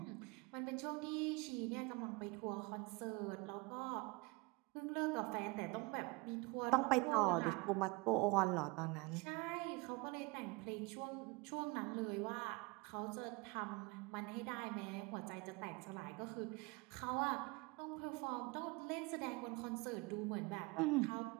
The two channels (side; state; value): left; quieter; 26.5 dB